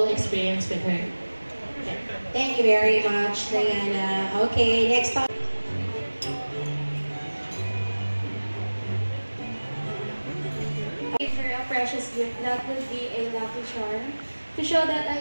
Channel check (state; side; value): inverted; both; correlation -1.00